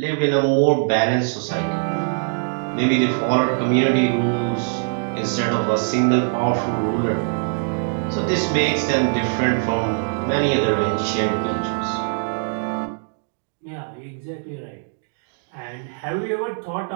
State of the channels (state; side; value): silent; left; digital silence